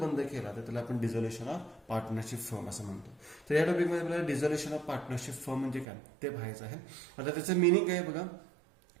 केला तर त्याला आपण डिझोल्युशन ऑफ पार्टनरशिप फर्म असं म्हणतो. तर या टॉपिकमध्ये आपल्याला डिझोल्युशन ऑफ पार्टनरशिप फर्म म्हणजे काय ते पाहायचं आहे. आता त्याचं मिनिंग काय बघा,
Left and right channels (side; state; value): left; drops out; at 5.9 s